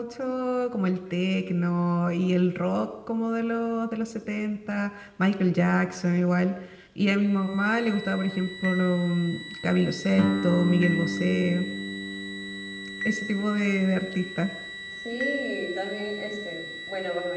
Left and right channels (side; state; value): both; identical; correlation 1.00